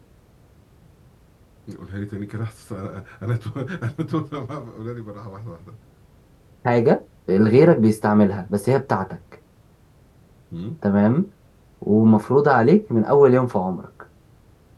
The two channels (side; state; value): both; identical; correlation 1.00